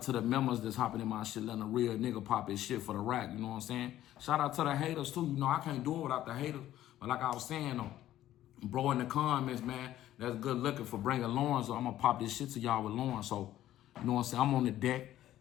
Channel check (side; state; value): right; quieter; 13.3 dB